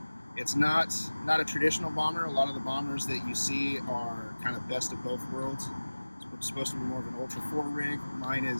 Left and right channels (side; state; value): both; inverted; correlation -1.00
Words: it's not a traditional bomber. A lot of the bombers that you see are kind of best of both worlds. It's supposed to be more of an Ultra 4 rig. Mine